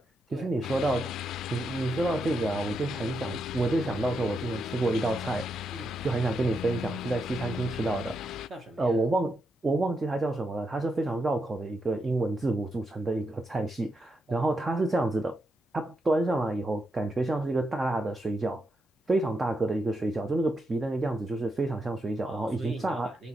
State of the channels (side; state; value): both; normal; correlation 0.83